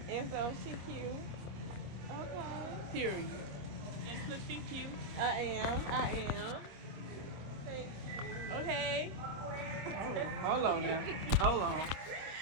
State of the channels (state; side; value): late; left; 25 ms